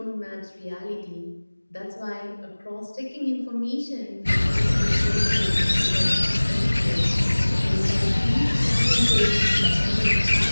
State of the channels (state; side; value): inverted; both; correlation -1.00